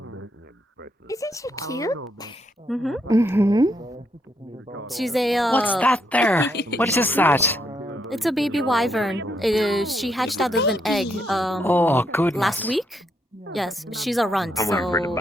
Isn't she cute? Mm-hmm. She's a. What's that there? What is that? It's a baby wyvern. She hatched out of an egg. Oh, good. Last week. Yes, she's a runt. I'm waiting for the So.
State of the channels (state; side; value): normal; both; correlation 0.76